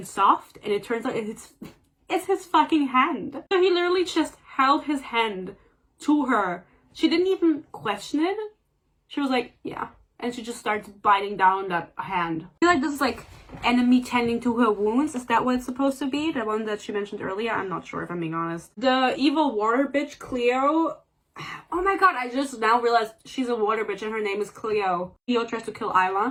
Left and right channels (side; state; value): both; identical; correlation 1.00